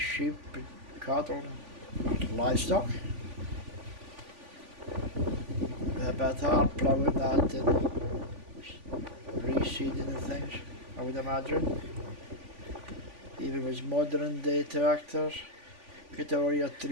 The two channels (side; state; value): left; late; 3.5 ms